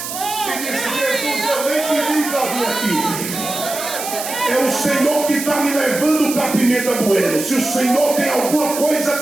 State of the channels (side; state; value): right; noise; hiss, 7 dB below the sound